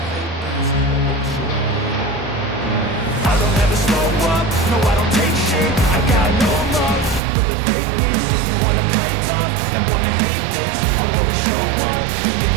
don't ever slow up, no I don't take shit. I got no love for the fakeness. If you wanna play tough and wanna hate this, I'll always show up and make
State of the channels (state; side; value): drops out; left; at 7.2 s